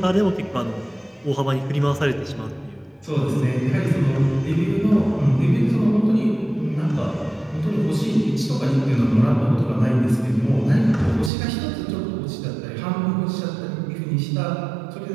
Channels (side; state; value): left; drops out; at 11.3 s